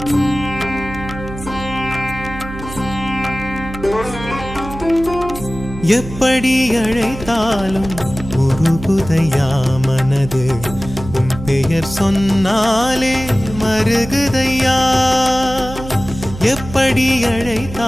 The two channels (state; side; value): noise; right; hum, 11 dB below the sound